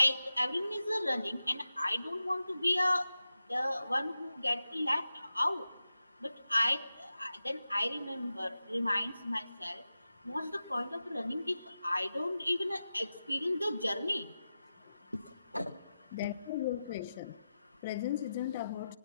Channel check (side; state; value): both; inverted; correlation -0.92